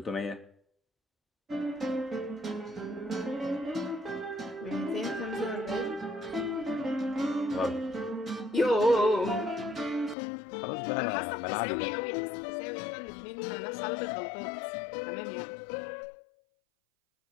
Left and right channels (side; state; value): right; drops out; at 10.2 s